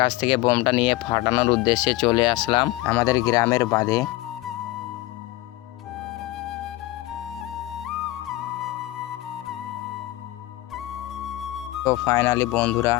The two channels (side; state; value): right; quieter; 17.9 dB